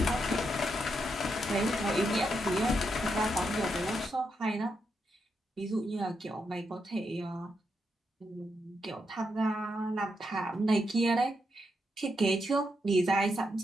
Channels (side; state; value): both; normal; correlation 0.82